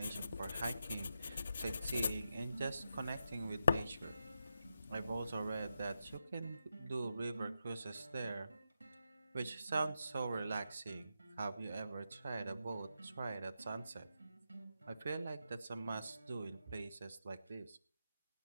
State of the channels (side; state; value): both; inverted; correlation -0.86